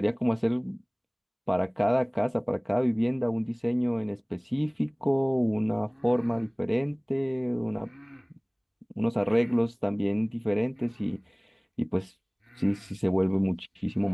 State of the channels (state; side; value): identical; both; correlation 1.00